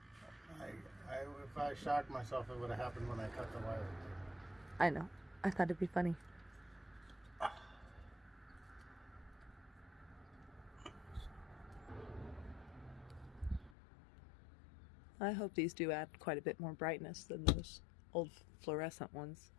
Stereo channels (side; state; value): right; drops out; at 13.8 s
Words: If I shocked myself, it would have happened when I cut the wire. I know. I thought it'd be funny. I hope these do add quite a bit more brightness than those old fluorescent ones.